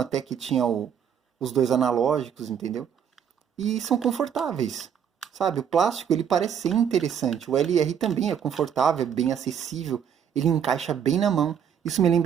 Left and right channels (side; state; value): left; quieter; 8.3 dB